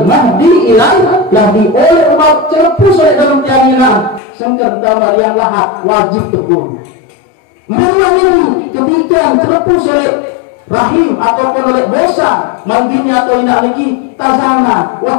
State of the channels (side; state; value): right; drops out; at 4.2 s